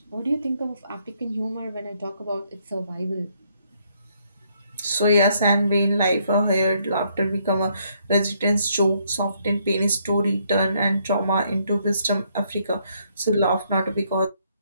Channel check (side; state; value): both; inverted; correlation -0.71